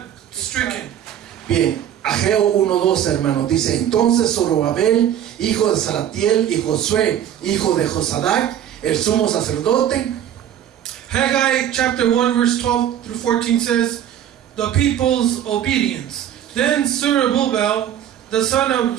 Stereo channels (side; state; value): left; quieter; 10.3 dB